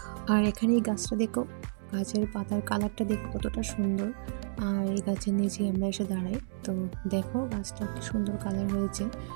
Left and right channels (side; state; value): left; silent; digital silence